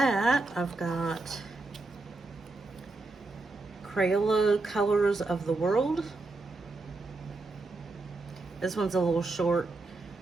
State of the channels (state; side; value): quieter; left; 3.3 dB